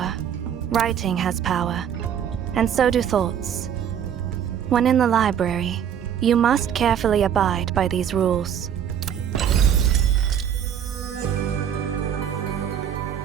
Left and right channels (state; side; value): quieter; left; 8.9 dB